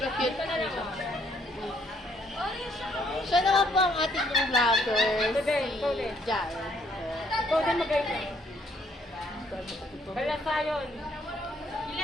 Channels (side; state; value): both; normal; correlation 0.68